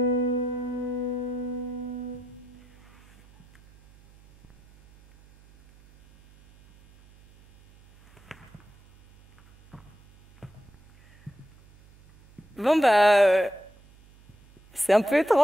Bon c'est un peu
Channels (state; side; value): noise; right; hum, 26 dB below the sound